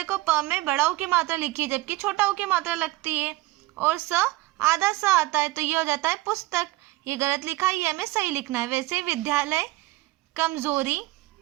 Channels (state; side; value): quieter; left; 19.3 dB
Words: प में बड़ा ओ की मात्रा लिखी है जबकि छोटा ओ की मात्रा लगती है और आधा सा आता है तो ये हो जाता है पुस्तक। ये गलत लिखा है, ये हमें सही लिखना है। वैसे विद्यालय, कमजोरी,